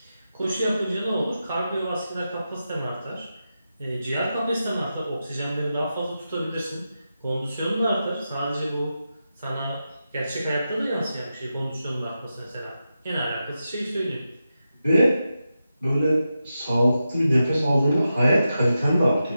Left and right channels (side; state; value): both; inverted; correlation -0.90